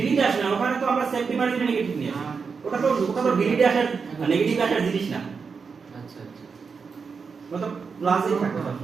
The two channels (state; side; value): quieter; left; 5.4 dB